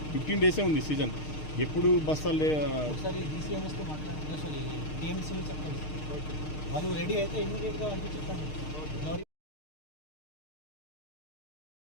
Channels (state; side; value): late; right; 6.5 ms